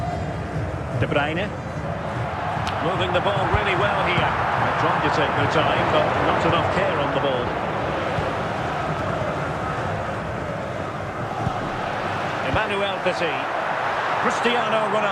De Bruyne. Moving the ball really well here. They're trying to take their time, but not enough care on the ball. Emmanuel Petit. Cristiano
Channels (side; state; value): both; identical; correlation 1.00